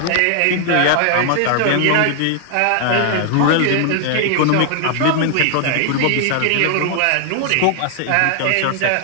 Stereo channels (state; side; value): different; both; correlation 0.00